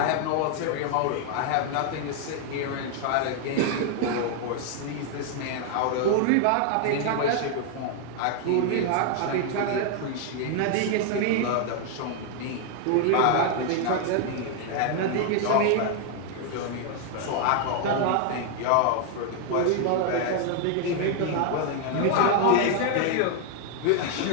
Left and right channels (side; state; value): both; different; correlation 0.00